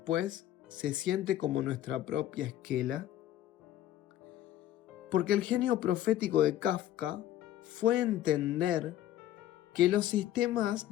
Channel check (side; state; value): right; quieter; 12.8 dB